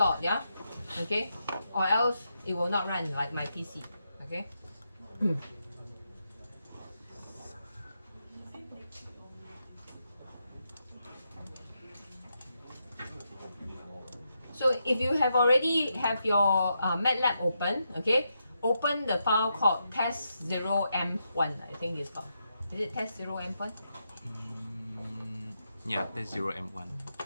yeah, okay, or else it will not run like my PC, okay. So if you have already have your MATLAB open, okay, open the file called test0m1. I think it's called. Is it test0m1? Yeah, that's 0M1.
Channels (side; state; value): both; inverted; correlation -0.83